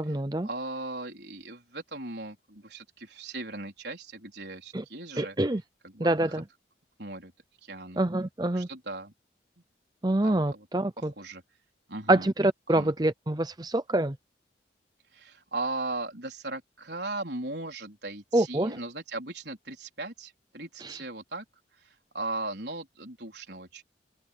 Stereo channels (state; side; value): normal; both; correlation 0.55